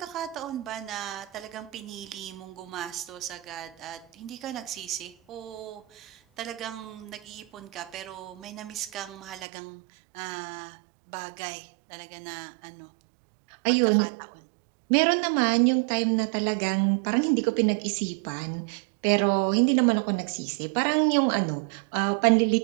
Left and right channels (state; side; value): drops out; left; at 9.5 s